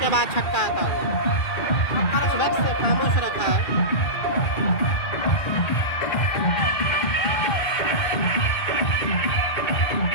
बाद छक्का आता हुआ। इस वक्त से खामोश रखा है।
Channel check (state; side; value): late; right; 2.5 ms